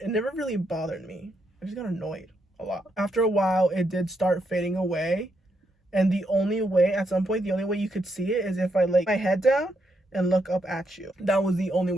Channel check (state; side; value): normal; both; correlation 0.79